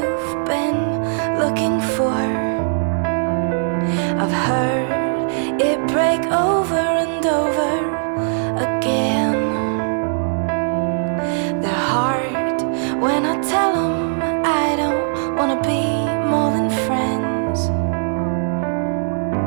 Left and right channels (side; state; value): left; silent; digital silence